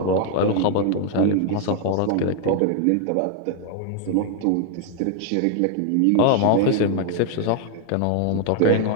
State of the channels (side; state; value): both; different; correlation 0.00